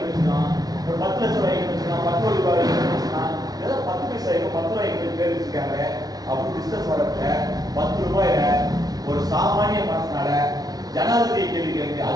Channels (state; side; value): late; left; 0.19 ms